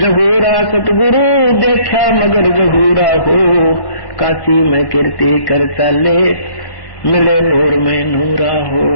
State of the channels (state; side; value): late; right; 1.1 ms